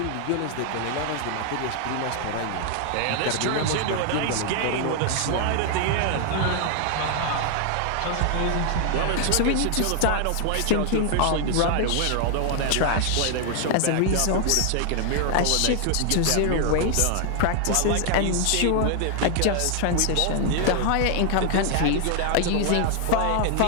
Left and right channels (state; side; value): different; both; correlation 0.00